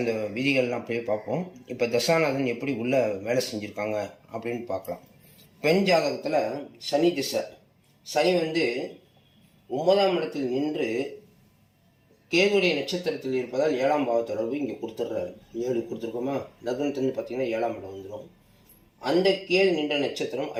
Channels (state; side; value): identical; both; correlation 1.00